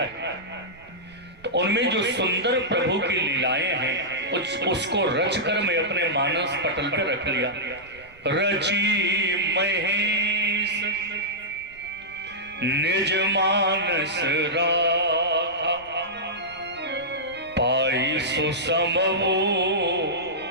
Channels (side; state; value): right; noise; rumble, 26 dB below the sound